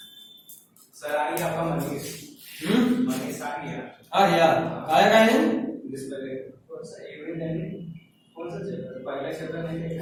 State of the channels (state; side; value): identical; both; correlation 1.00